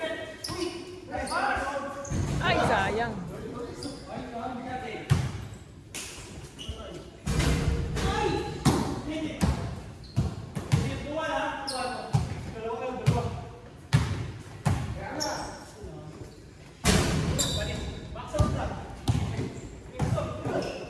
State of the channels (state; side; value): identical; both; correlation 1.00